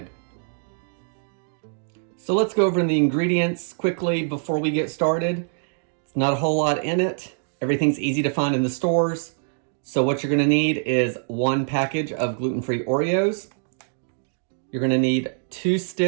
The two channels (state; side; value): silent; left; digital silence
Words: So let's go over the ingredients quickly before we get started. It's not a whole lot in it. Everything's easy to find in the stores. So what you're gonna need is 1 package of gluten-free Oreos. You're gonna need 2